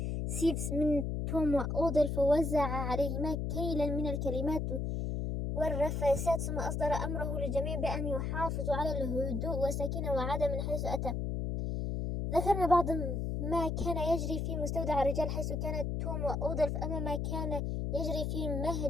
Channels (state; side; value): noise; left; hum, 1 dB below the sound